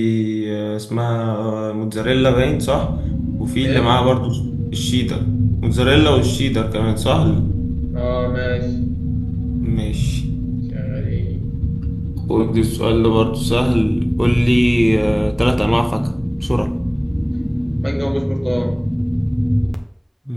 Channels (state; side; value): identical; both; correlation 1.00